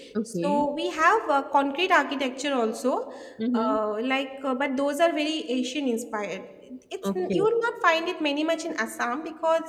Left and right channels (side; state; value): both; identical; correlation 1.00